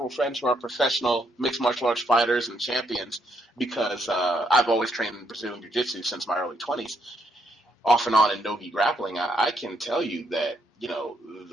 friends who are professional mixed martial arts fighters and champions because I've always trained in Brazilian Jiu-Jitsu since my early 20s, off and on in no-gi grappling. I can tell you that,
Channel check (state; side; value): normal; both; correlation 0.75